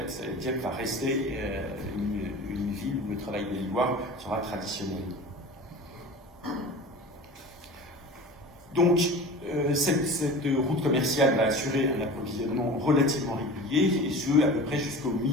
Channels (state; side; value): normal; both; correlation 0.36